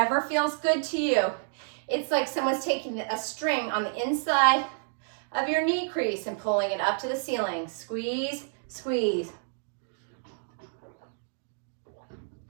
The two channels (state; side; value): silent; left; digital silence